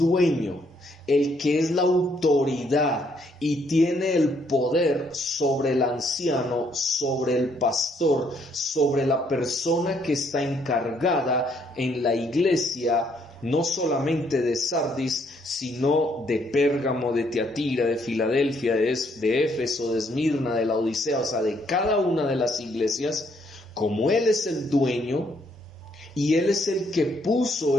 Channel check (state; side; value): normal; both; correlation 0.70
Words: el que es la autoridad y tiene el poder sobre el anciano, sobre el pastor, sobre la persona que está encargada en la iglesia, no solamente de Sardis, sino de Pérgamo, de Tiatira, de Filadelfia, de Éfeso, de Esmirna, de Laodicea, o sea, de cada una de las iglesias. Como él es el dueño y él es el que puso